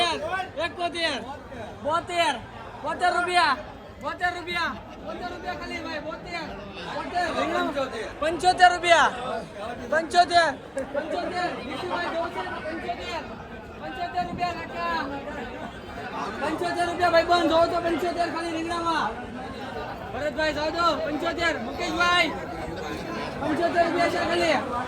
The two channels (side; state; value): both; identical; correlation 1.00